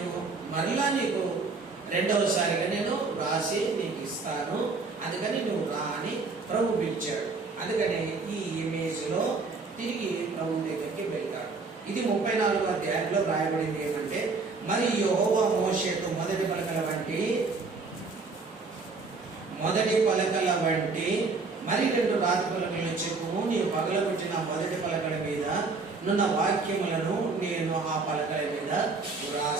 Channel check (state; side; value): quieter; left; 4.1 dB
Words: మరలా నీకు రెండవసారిగా నేను రాసి నీకు ఇస్తాను, అందుకని నువ్వు రా అని ప్రభు పిలిచాడు. అందుకని ఈ ఇమేజ్లో తిరిగి ప్రభు దగ్గరికి వెళ్తాడు. ఇది 34వ అధ్యాయంలో రాయబడింది ఏమంటే, మరి యెహోవా మోషేతో మొదటి పలకల వంటి మరి 2 రాతి పలకలను చెప్పుము, నీవు పగలగొట్టిన మొదటి పలకల మీద నున్న వాక్యములను నేను ఆ పలకల మీద